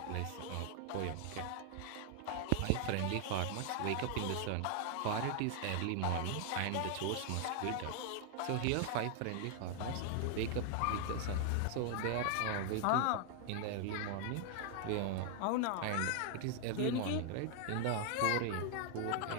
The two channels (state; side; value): different; both; correlation 0.00